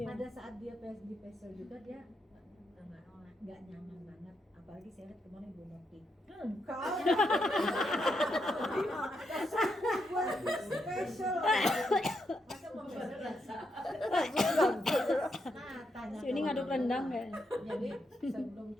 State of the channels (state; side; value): normal; both; correlation 0.81